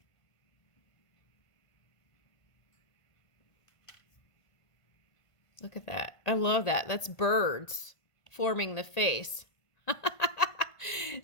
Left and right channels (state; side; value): late; right; 1.5 ms